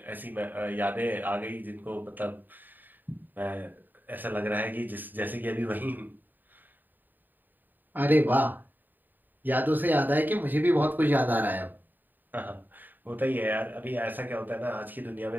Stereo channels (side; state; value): left; late; 0.090 ms